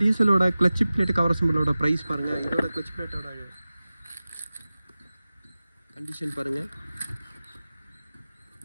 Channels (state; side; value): inverted; both; correlation -0.97